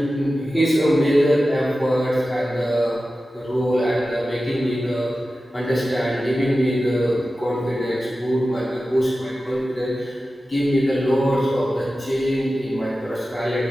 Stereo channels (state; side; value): normal; both; correlation 0.94